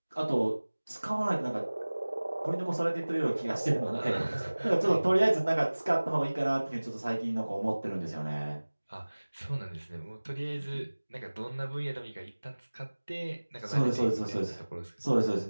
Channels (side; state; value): both; inverted; correlation -1.00